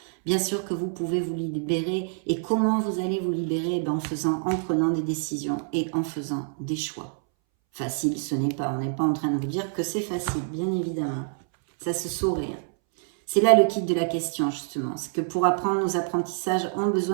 Bien sûr que vous pouvez vous libérer. Et comment vous allez vous libérer? En prenant des décisions et en faisant des choix. Facile, ce n'est pas. On n'est pas en train de vous dire que c'est facile, bien évidemment. Ça se saurait. C'est là le kit de la question, justement. C'est que pour apprendre, nos apprentissages ont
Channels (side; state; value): left; silent; 61 dB below the other